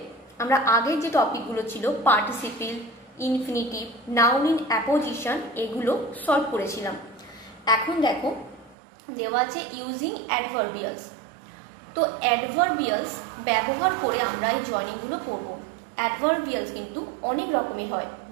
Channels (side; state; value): left; drops out; at 8.8 s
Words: আমরা আগের যে টপিকগুলো ছিল participle, infinitive, noun in apposition এগুলো সলভ করেছিলাম। এখন দেখো দেওয়া আছে ইউজিং অ্যাডভার্বিয়ালস। তো অ্যাডভার্বিয়ালস ব্যবহার করে আমরা এই জয়নিংগুলো করব। অ্যাডভার্বিয়ালস কিন্তু অনেক রকমের হয়,